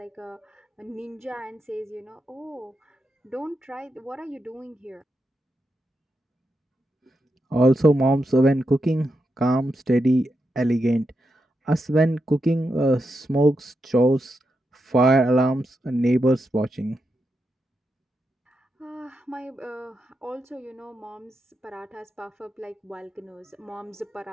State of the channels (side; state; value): both; normal; correlation 0.86